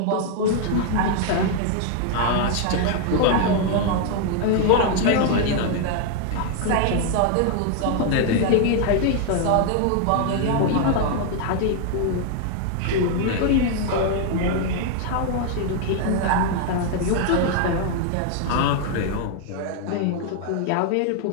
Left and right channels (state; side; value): different; both; correlation 0.00